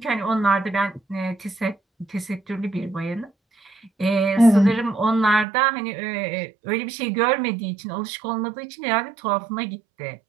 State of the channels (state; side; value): drops out; left; at 5.5 s